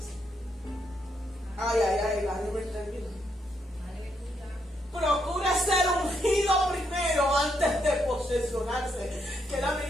Ay, David me termina. Procura ser ungido primero antes de posesionarse. Que es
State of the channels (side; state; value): both; normal; correlation 0.77